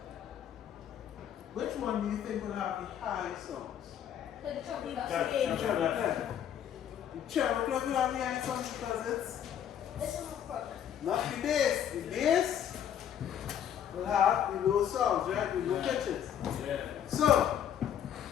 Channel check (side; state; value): right; quieter; 9.5 dB